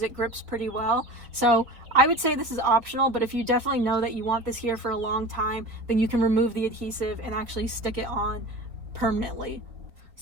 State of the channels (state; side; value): late; left; 4.2 ms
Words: it grips pretty well. So I would say this is optional, but if you definitely know that you want this here for a long time, then you can remove the adhesive and actually stick it on permanently.